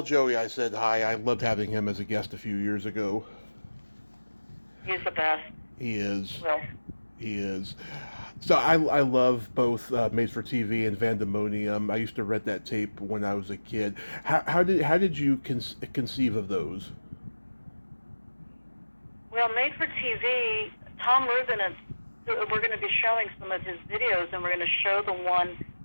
Joey I said hi. I loved having him as a guest a few years ago. He's the best. He is. Well, he is. So I love both Made for TV and Vandemonium. I used to rent that tape when I was a kid. How did you conceive of those? Well, Made for TV, Tom Rubin we're going to be showing some of his videos, and we're going to show the one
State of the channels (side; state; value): both; inverted; correlation -1.00